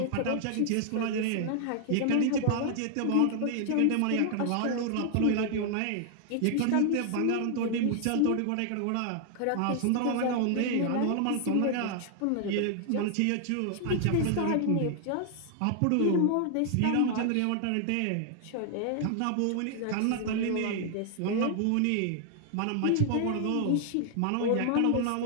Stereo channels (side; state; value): both; different; correlation 0.00